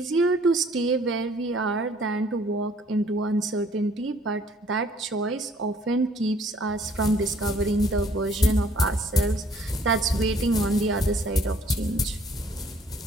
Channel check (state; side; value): normal; both; correlation 0.59